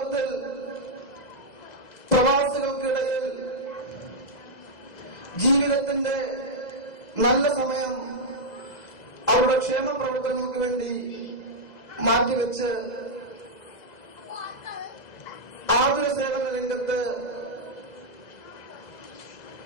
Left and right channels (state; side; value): late; right; 2.0 ms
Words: പ്രവാസികൾക്കിടയിൽ ജീവിതത്തിന്റെ നല്ല സമയം അവരുടെ ക്ഷേമ പ്രവർത്തനങ്ങൾക്ക് വേണ്ടി മാറ്റിവെച്ച് ആതുര സേവന രംഗത്ത്,